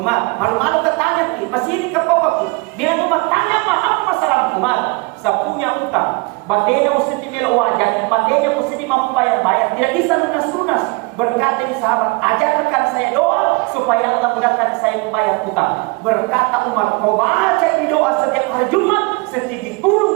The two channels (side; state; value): left; quieter; 27.2 dB